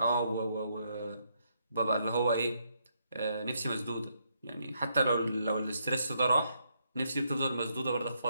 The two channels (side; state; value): both; inverted; correlation -0.76